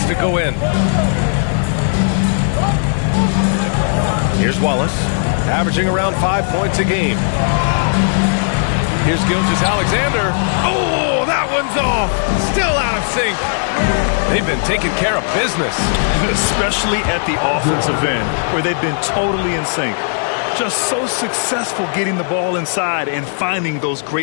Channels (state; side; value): silent; right; digital silence